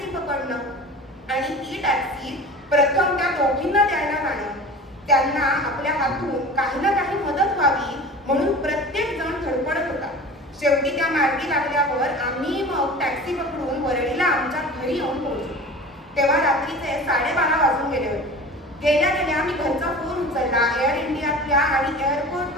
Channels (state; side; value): normal; both; correlation 0.37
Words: पकडणं आणि ती टॅक्सी प्रथम त्या दोघींना द्यायला जाणं, त्यांना आपल्या हातून काही ना काही मदत व्हावी म्हणून प्रत्येक जण धडपडत होता. शेवटी त्या मार्गी लागल्यावर आम्ही मग टॅक्सी पकडून वरळीला आमच्या घरी येऊन पोहोचलो. तेव्हा रात्रीचे 12:30 वाजून गेले होते. गेल्या गेल्या मी घरचा फोन उचलला. एअर इंडियातल्या आणि